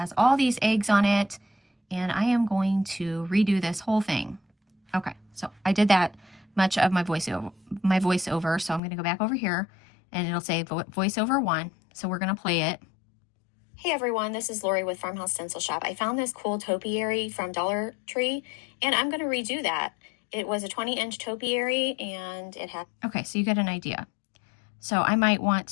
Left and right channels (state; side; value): drops out; right; at 8.8 s